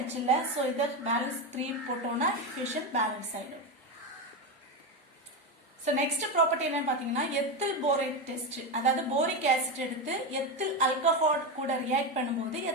இல்ல, ஸோ இதை பேலன்ஸ் 3 போட்டோம்னா ஈக்குவேஷன் பேலன்ஸ் ஆயிடும். ஸோ நெக்ஸ்ட் ப்ராப்பர்ட்டி என்னன்னு பார்த்தீங்கன்னா எத்தில் போரேட் டெஸ்ட். அதாவது போரிக் ஆசிட் எடுத்து எத்தில் ஆல்கஹால் கூட ரியாக்ட் பண்ணும்போது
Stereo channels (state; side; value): normal; both; correlation 0.13